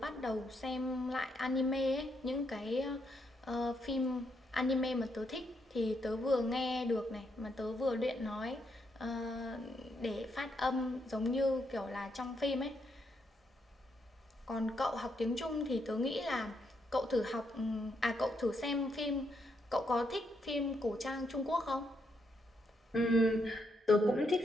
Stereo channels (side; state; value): both; normal; correlation 0.78